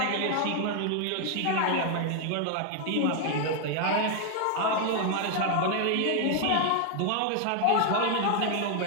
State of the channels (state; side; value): different; both; correlation 0.00